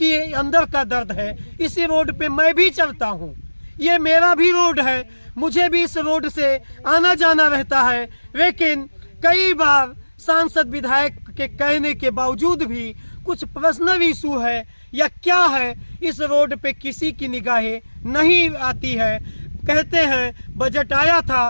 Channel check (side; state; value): both; inverted; correlation -1.00